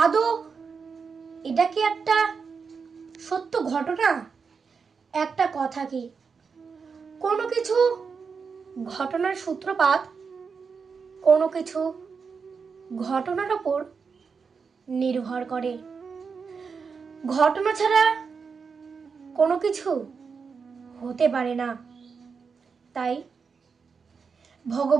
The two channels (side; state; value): left; quieter; 5.5 dB